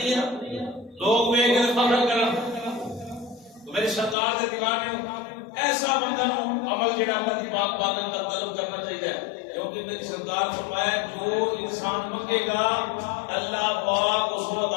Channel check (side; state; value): right; drops out; at 4.2 s